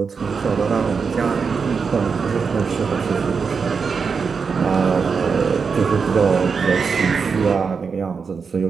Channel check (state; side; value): quieter; left; 5.5 dB